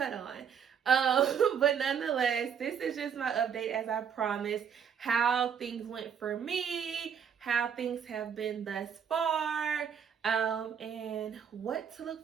on. But nonetheless, this is just my update as I promised, how things went for me, how things have been thus far, and what to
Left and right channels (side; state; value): left; quieter; 7.6 dB